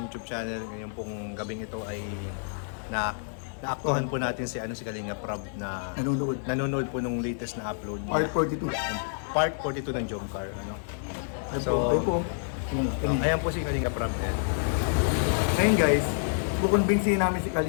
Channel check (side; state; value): right; silent; digital silence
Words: YouTube channel. Ngayon pong gabing ito ay naaktuhan po natin si Kalinga Prab na nanonood po nung latest na upload. Part 42. Part 42 ng Jomcar. Ayan po si Kalinga Prab. Ngayon guys, kukonbinsihin namin si